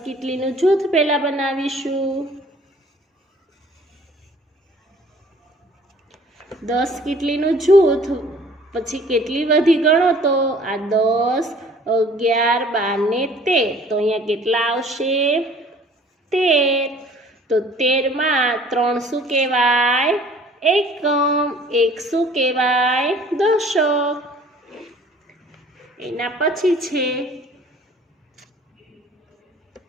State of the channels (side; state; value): both; normal; correlation 0.52